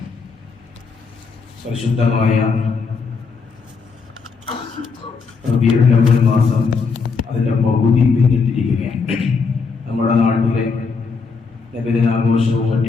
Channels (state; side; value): quieter; right; 4.9 dB